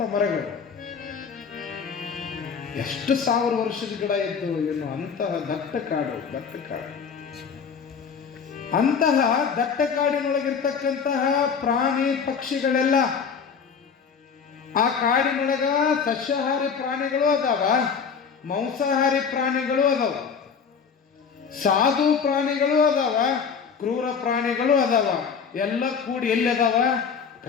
ಮರಗಳು, ಎಷ್ಟು 1000 ವರ್ಷದ ಗಿಡ ಇದ್ದು ಏನು. ಅಂತಹ ದಟ್ಟ ಕಾಡು. ಅಂತಹ ದಟ್ಟ ಕಾಡಿನೊಳಗಿರ್ತಕ್ಕಂತಹ ಪ್ರಾಣಿ ಪಕ್ಷಿಗಳೆಲ್ಲ, ಆ ಕಾಡಿನೊಳಗ ಸಸ್ಯಾಹಾರಿ ಪ್ರಾಣಿಗಳು ಅದಾವ, ಮಾಂಸಾಹಾರಿ ಪ್ರಾಣಿಗಳು ಅದಾವ, ಸಾಧು ಪ್ರಾಣಿಗಳು ಅದಾವ, ಕ್ರೂರ ಪ್ರಾಣಿಗಳು ಅದಾವ. ಎಲ್ಲ ಕೂಡಿ ಎಲ್ಲಿ ಅದಾವ?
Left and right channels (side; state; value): right; quieter; 6.2 dB